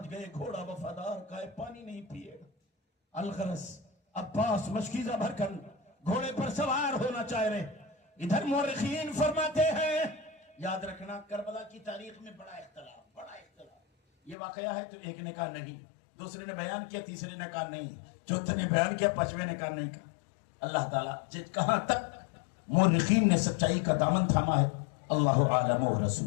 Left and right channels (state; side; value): drops out; right; at 14.4 s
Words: گئے گھوڑا وفادار کا ہے، پانی نہیں پیے گا۔ الغرض عباس مشکیزہ بھر کر گھوڑے پر سوار ہونا چاہ رہے۔ ادھر مورخین فرماتے ہیں، یاد رکھنا کربلا کی تاریخ میں بڑا اختلاف، یہ واقعہ ہے تو ایک نے کہا نہیں، دوسرے نے بیان کیا، تیسرے نے کہا نہیں، چوتھے نے بیان کیا، پانچویں نے کہا نہیں کہا۔ اللہ تعالیٰ کہاں تک مورخین نے سچائی کا دامن تھاما ہے، اللہ عالم و